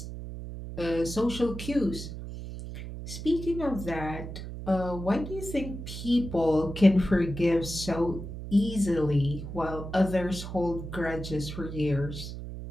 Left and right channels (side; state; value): right; noise; hum, 9 dB below the sound